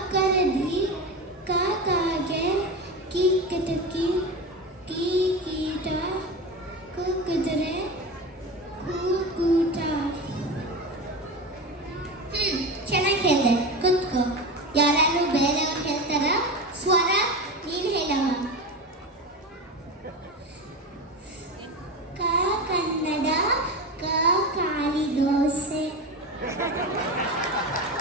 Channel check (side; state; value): both; normal; correlation 0.24